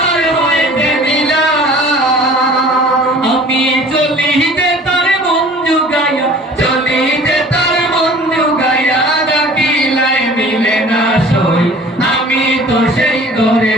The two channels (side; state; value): both; normal; correlation 0.47